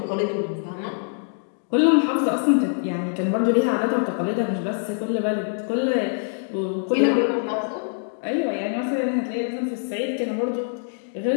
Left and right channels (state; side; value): silent; right; digital silence